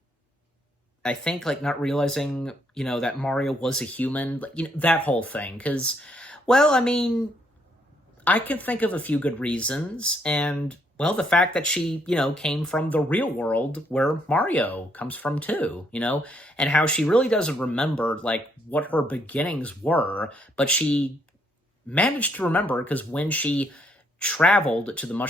think, like, not realizing, that Mario was a human, that whole thing. Because, well, I mean, I can think of a few good reasons, and, well, the fact that she, came from the real world where Mario comes from too, and how she really doesn't remember, like, what her beginnings were, but she managed to remember because when she traveled to the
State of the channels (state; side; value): normal; both; correlation 0.71